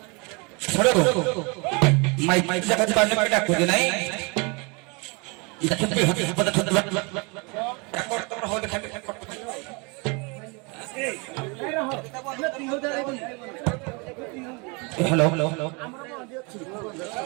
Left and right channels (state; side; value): quieter; left; 30.2 dB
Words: ମାଇକ୍ ଜାଗା ପାଣି ପାଇଁ ଡାକୁଛି ନାଇଁ ଦେଖନ୍ତି ପଦ ଛତ୍ର ଡାକର ତମର ହଉ ଦେଖାବେ ହ୍ୟାଲୋ